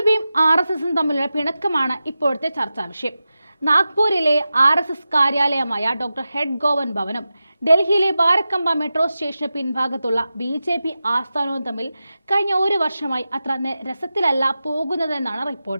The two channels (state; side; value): inverted; both; correlation -0.93